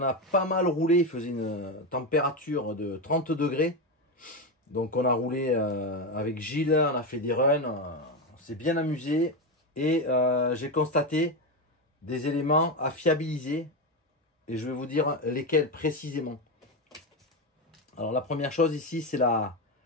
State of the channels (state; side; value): normal; both; correlation 0.13